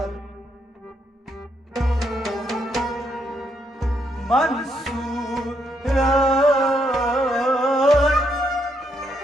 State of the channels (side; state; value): both; normal; correlation 0.76